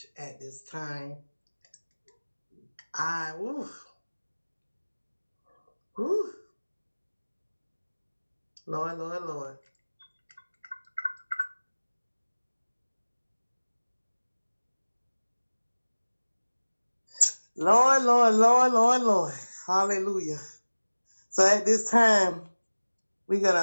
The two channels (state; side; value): inverted; both; correlation -1.00